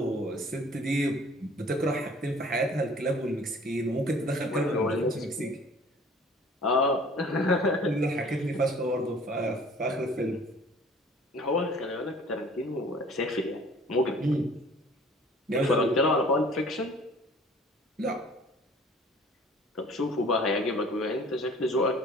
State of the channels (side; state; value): both; normal; correlation 0.51